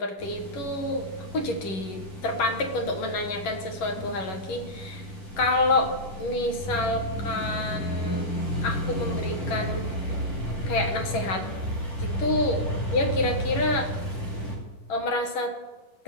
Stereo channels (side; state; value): right; late; 11 ms